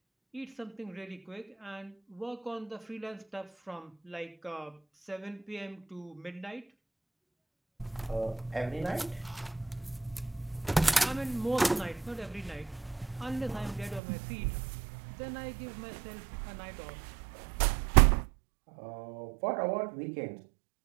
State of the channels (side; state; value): left; drops out; at 14.0 s